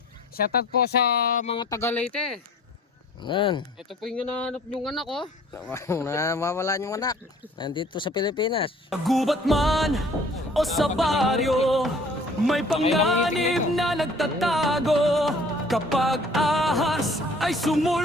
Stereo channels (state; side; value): normal; both; correlation 0.52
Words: Shoutout po sa mga Taga-Leyte. Yan. Ito po yung hinahanap yung anak ko. Mawala yung anak. Nandito sa Pilipinas. Gubat man o sa baryo, may panganib na nagtatago. Kapag ahas ay